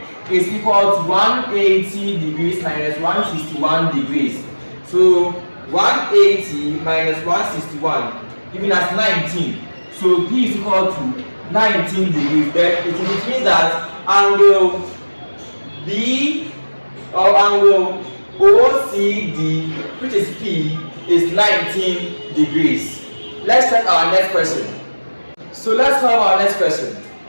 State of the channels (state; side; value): inverted; both; correlation -1.00